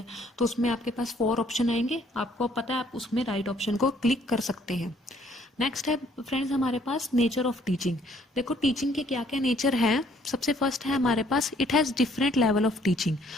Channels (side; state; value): both; normal; correlation 0.63